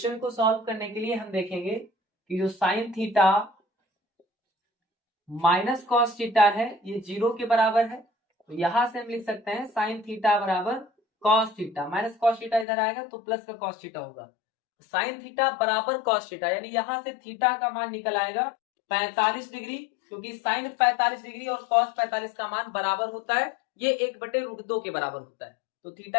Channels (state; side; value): drops out; right; at 12.7 s